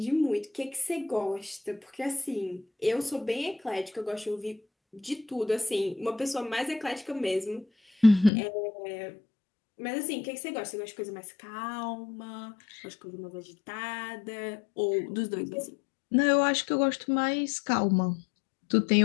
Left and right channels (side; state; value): right; drops out; at 8.3 s